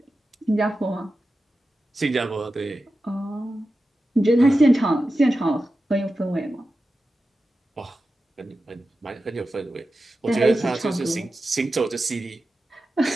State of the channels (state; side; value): normal; both; correlation 0.92